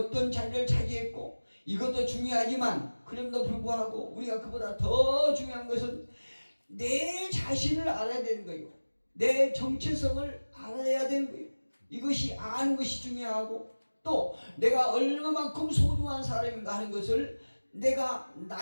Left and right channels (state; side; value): inverted; both; correlation -1.00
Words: 자리를 차지했고 이것도 중요하지만 그럼에도 불구하고 우리가 그보다 더 중요한 것은 내 자신을 알아야 되는 거예요. 내 정체성을 알아야 되는 거예요. 이것이 아는 것이 중요하고 또 내가 얼마만큼 소중한 사람인가 하는 것을 내가